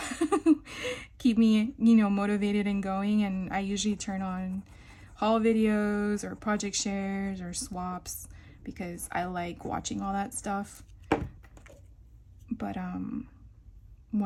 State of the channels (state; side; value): identical; both; correlation 1.00